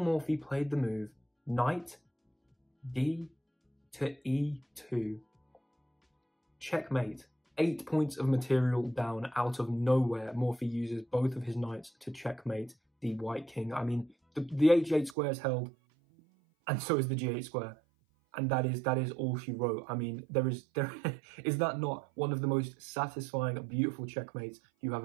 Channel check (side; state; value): left; drops out; at 15.2 s